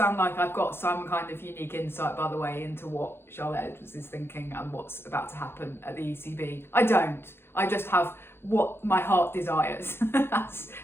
like I've got some kind of unique insight, by the way, into what Charlotte Edwards is thinking and what's about to happen at the ECB. I don't. I just have what my heart desires. That's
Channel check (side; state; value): right; late; 0.11 ms